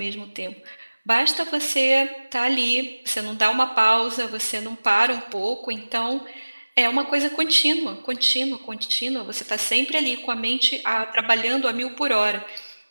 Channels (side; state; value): both; inverted; correlation -1.00